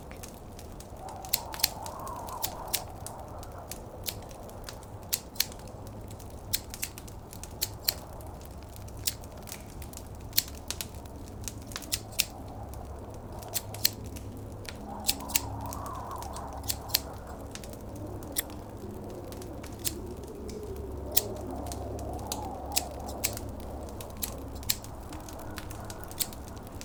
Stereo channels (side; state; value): both; identical; correlation 1.00